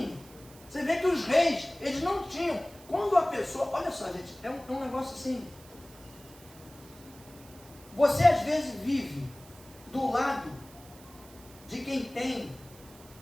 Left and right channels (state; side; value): noise; right; hiss, 22 dB below the sound